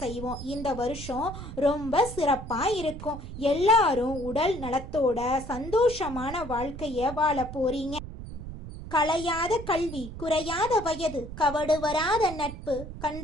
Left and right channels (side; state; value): right; noise; rumble, 11 dB below the sound